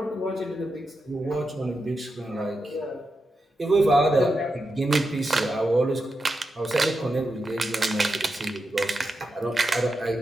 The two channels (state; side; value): normal; both; correlation 0.88